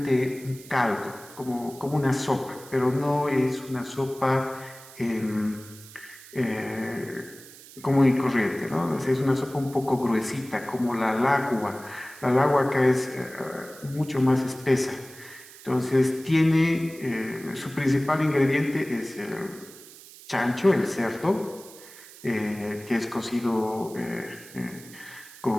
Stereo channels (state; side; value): noise; right; hiss, 19 dB below the sound